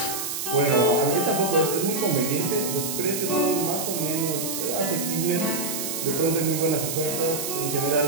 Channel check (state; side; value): noise; right; hiss, 4 dB below the sound